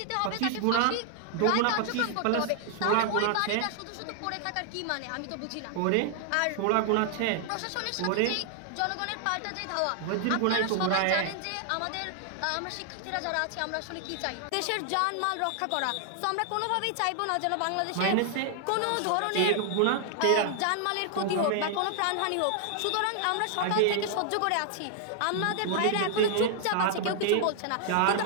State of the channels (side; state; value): both; different; correlation 0.00